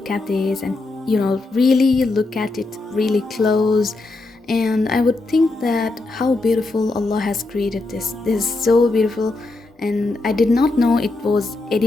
at this and really look at it really close, and I would think that how beautiful Allah has created this. This is so beautiful, and I did not know it was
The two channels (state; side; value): quieter; right; 3.2 dB